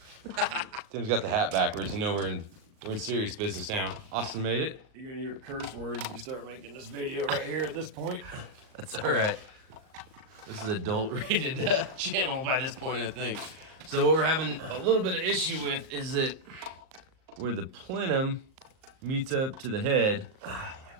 Tim's got the hat backwards. You know we're in serious business now. Austin made it. You're gonna hear curse words if you start making this video right here at this point. That's all right. This is adult rated channel by this point, I think. So what we're having a little bit of issue with is that where the plenum meets up to the head,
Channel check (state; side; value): late; left; 38 ms